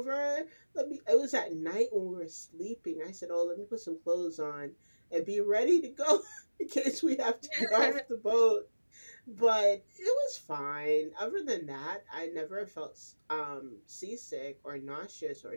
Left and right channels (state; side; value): inverted; both; correlation -1.00